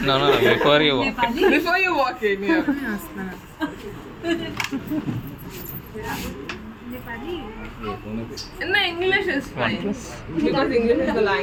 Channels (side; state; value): both; identical; correlation 1.00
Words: No, before you walk. Before you walk in, yeah. No, English is fine. Because English is the